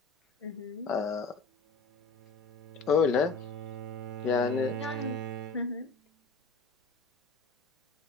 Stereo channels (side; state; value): right; quieter; 4.0 dB